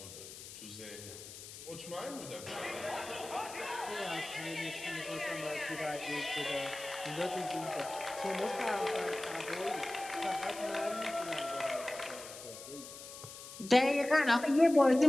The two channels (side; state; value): left; noise; hiss, 13 dB below the sound